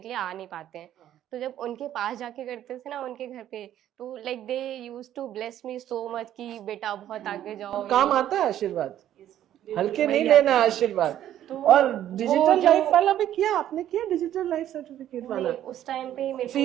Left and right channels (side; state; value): left; quieter; 11.7 dB